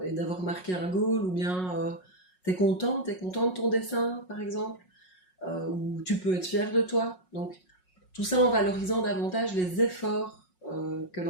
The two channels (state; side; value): late; right; 5.5 ms